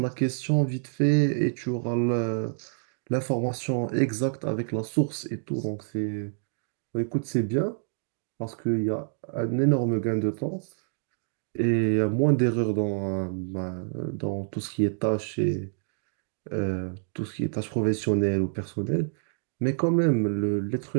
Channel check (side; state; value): left; silent; digital silence